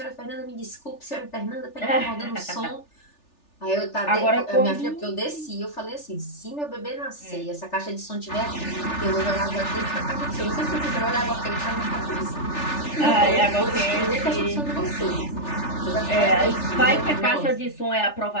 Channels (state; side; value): late; right; 3.4 ms